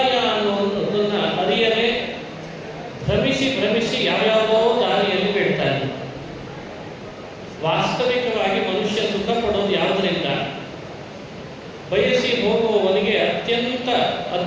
ಅನ್ನೋದನ್ನು ಅರಿಯದೆ ಭ್ರಮಿಸಿ ಯಾವ್ಯಾವುದೋ ದಾರಿಯಲ್ಲಿ ಬೀಳ್ತಾನೆ. ವಾಸ್ತವಿಕವಾಗಿ ಮನುಷ್ಯ ಸುಖ ಪಡೋದು ಯಾವುದರಿಂದ? ಬಯಸಿ ಹೋಗುವವನಿಗೆ ಅತ್ಯಂತ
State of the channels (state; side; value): identical; both; correlation 1.00